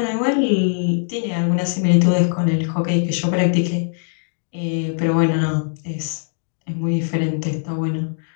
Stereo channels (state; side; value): silent; right; digital silence